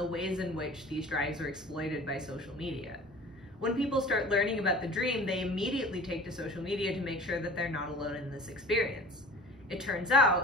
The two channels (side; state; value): both; normal; correlation 0.43